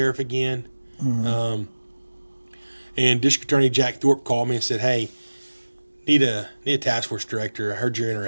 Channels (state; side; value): inverted; both; correlation -1.00